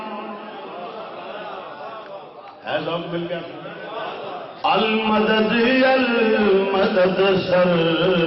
ہے ذوق مل گیا، المدد المدد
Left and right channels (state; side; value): identical; both; correlation 1.00